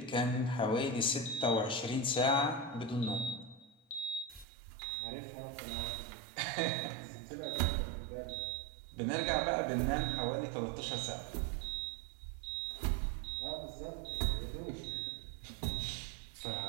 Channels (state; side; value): drops out; left; at 4.5 s